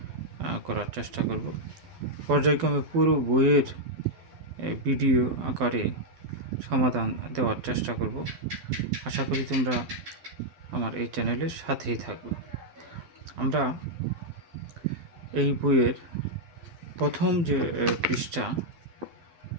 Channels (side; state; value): left; late; 12 ms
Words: করার চেষ্টা করব। পর্যায়ক্রমে পুরো বইয়ের ভিডিও আকারে সমাধান দেওয়ার চেষ্টা করব। আশা করি তোমরা আমার এই চ্যানেলের সাথেই থাকবে। আমরা এই বইয়ের প্রথম যে পৃষ্ঠা